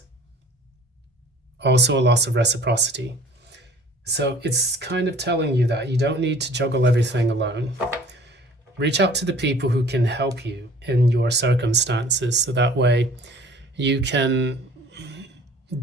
also a loss of reciprocity. So it's kind of telling you that you don't need to juggle everything alone. Reach out to the people who can help you in your circumstances, so that way you can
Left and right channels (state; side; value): normal; both; correlation 0.50